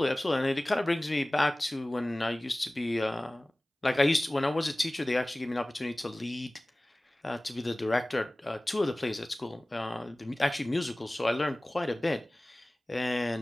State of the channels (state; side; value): normal; both; correlation 0.98